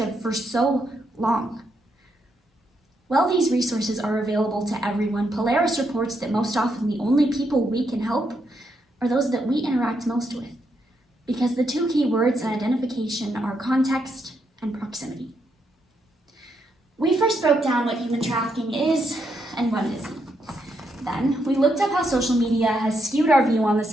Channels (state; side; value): normal; both; correlation 0.79